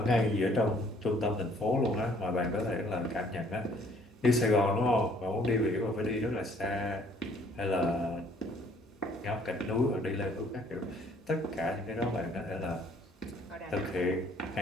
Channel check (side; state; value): both; normal; correlation 0.60